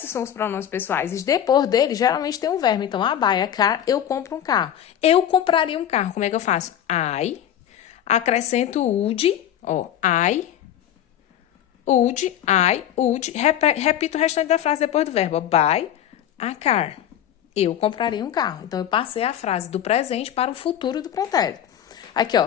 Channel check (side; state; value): right; quieter; 10.6 dB